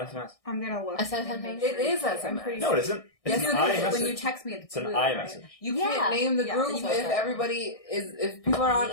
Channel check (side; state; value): right; late; 1.6 ms